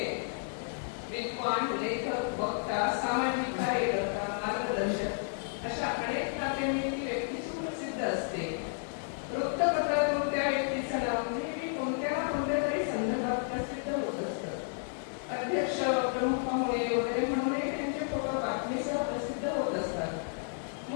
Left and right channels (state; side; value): silent; right; digital silence